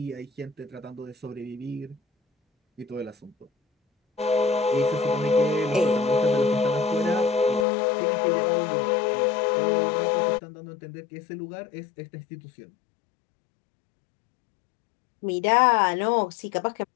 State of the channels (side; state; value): right; drops out; at 7.7 s